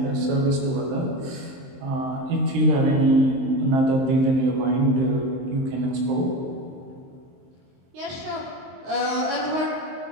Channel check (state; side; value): late; left; 23 ms